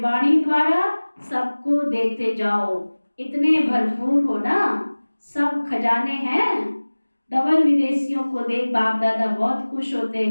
द्वारा, सबको देते जाओ। इतने भरपूर हो ना, सब खजाने हैं। डबल विदेशियों को देख बाप दादा बहुत खुश होते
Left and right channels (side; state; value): both; inverted; correlation -1.00